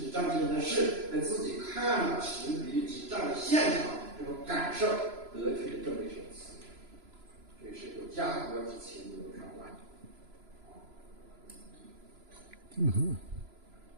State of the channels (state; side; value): late; left; 3.0 ms